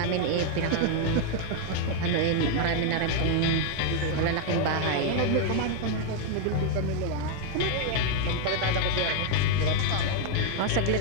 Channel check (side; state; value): both; different; correlation 0.00